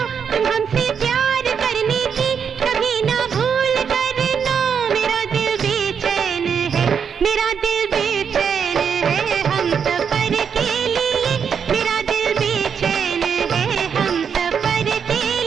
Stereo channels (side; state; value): left; quieter; 7.0 dB